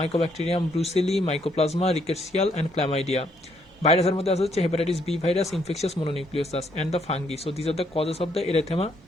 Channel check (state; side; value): normal; both; correlation 0.71